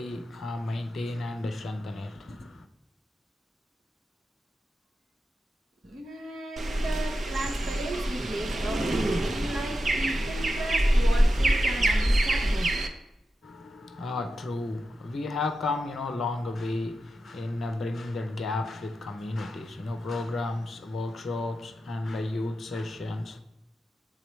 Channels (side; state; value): both; normal; correlation 0.90